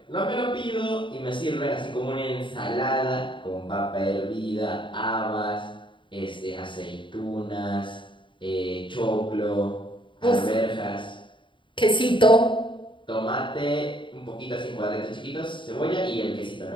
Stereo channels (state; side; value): late; right; 0.24 ms